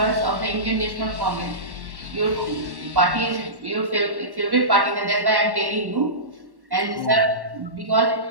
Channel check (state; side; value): late; left; 1.1 ms